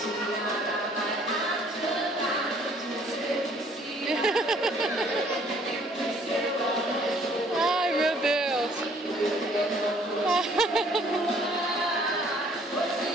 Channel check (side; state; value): both; normal; correlation 0.60